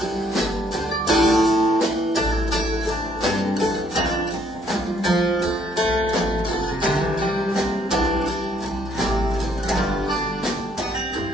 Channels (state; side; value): normal; both; correlation 0.67